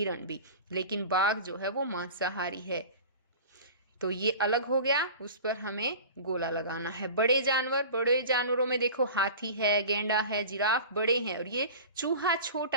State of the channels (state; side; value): inverted; both; correlation -0.37